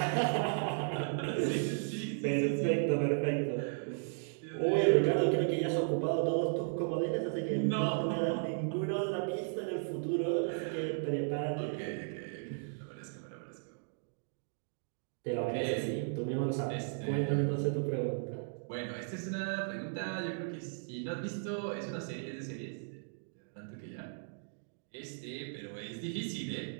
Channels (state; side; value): silent; left; digital silence